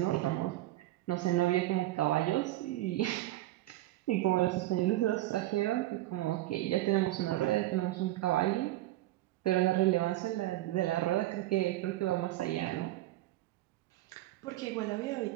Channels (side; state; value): left; quieter; 16.2 dB